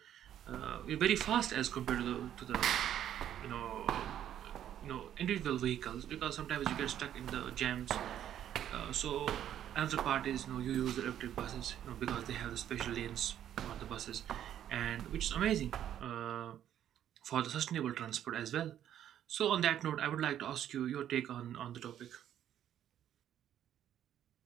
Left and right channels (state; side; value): quieter; left; 10.7 dB